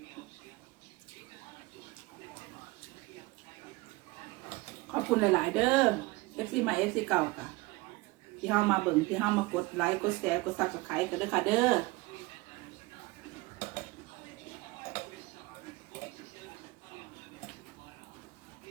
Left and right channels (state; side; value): quieter; left; 22.5 dB